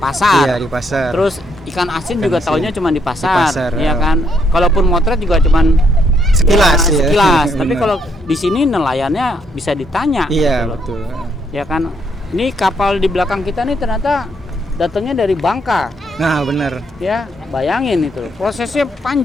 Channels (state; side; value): normal; both; correlation 0.74